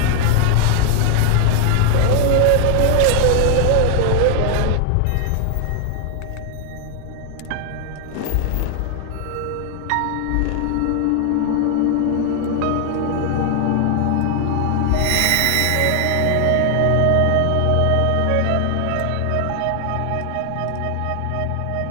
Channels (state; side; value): different; both; correlation 0.00